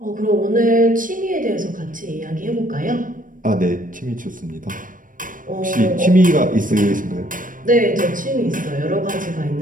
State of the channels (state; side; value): late; left; 0.39 ms